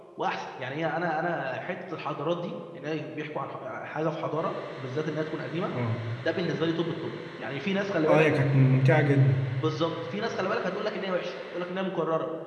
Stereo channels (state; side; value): identical; both; correlation 1.00